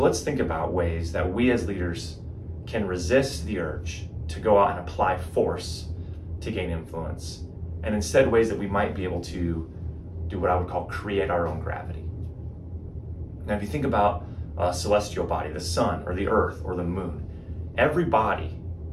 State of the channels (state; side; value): identical; both; correlation 1.00